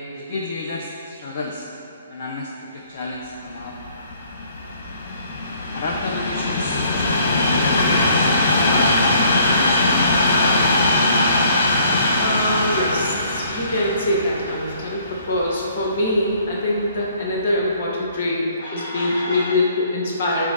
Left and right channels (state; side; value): inverted; both; correlation -0.61